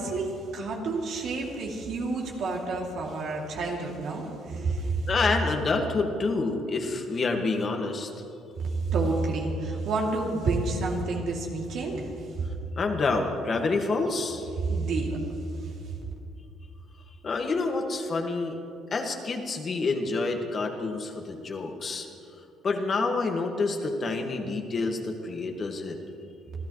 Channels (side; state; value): both; normal; correlation 0.76